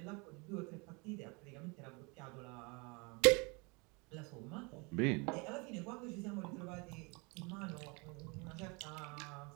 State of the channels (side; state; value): left; quieter; 29.7 dB